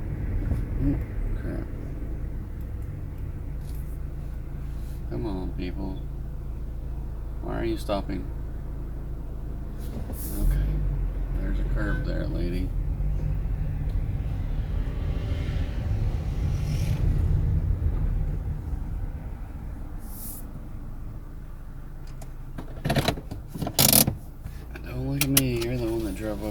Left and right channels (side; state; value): both; identical; correlation 1.00